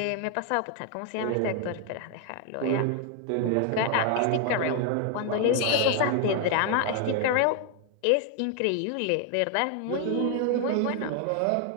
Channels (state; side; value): different; both; correlation 0.00